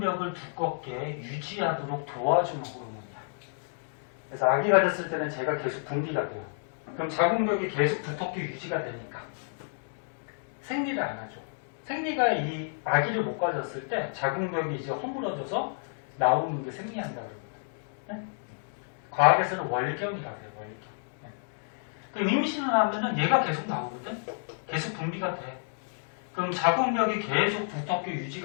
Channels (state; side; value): silent; right; digital silence